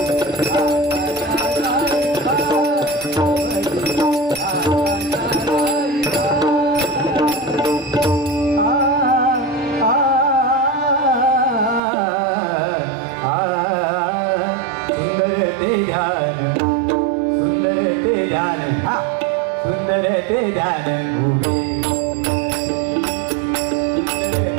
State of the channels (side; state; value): left; drops out; at 11.8 s